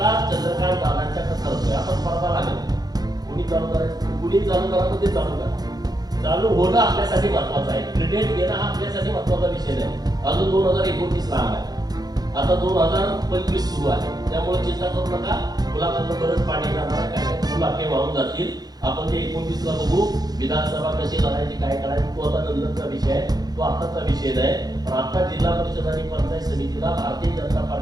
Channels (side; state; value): left; late; 0.19 ms